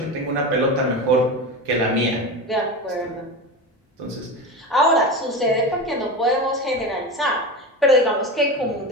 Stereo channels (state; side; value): normal; both; correlation 0.24